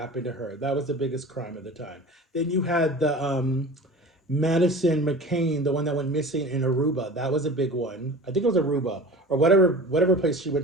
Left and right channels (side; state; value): both; normal; correlation 0.37